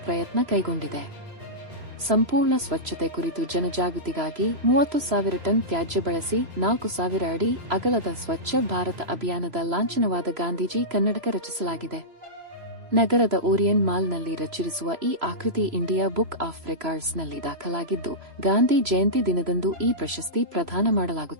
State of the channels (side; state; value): left; late; 3.0 ms